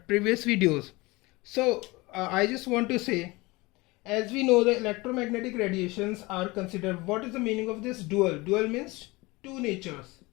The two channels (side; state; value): right; quieter; 22.9 dB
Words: previous videos. So I just want to say, as we know, the electromagnetic radiations are considered. What is the meaning of this dual? Dual means two natures.